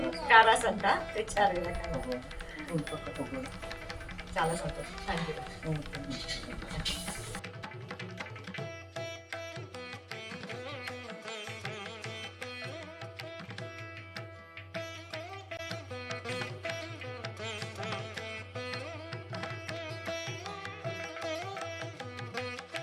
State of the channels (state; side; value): identical; both; correlation 1.00